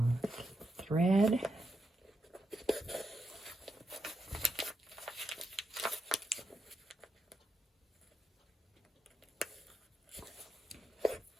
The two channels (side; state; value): both; normal; correlation 0.83